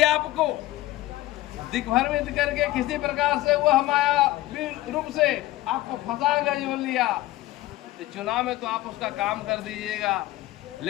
आपको दिग्भ्रमित करके किसी प्रकार से वह मायावी रूप से आपको फंसा गया जो लिया, तो चुनाव में तो आप उसका काम कर दीजिएगा,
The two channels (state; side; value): quieter; right; 17.0 dB